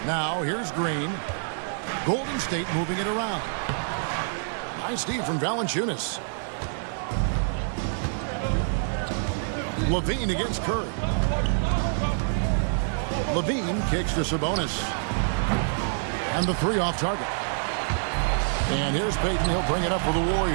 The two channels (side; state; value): left; silent; digital silence